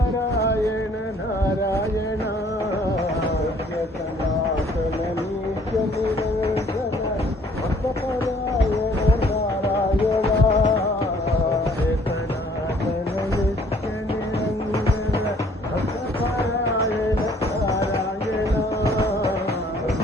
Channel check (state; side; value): normal; both; correlation 0.59